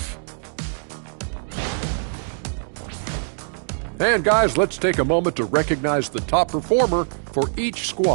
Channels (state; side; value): silent; left; digital silence